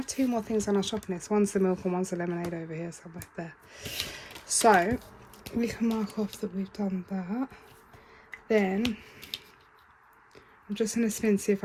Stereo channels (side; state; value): both; identical; correlation 1.00